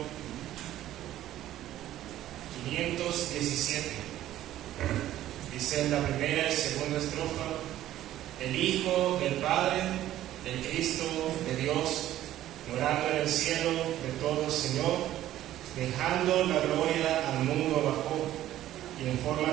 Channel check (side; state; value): left; quieter; 13.3 dB